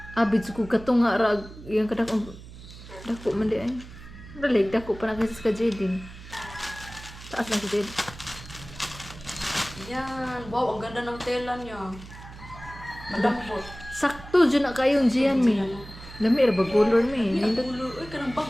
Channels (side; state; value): right; noise; hum, 16 dB below the sound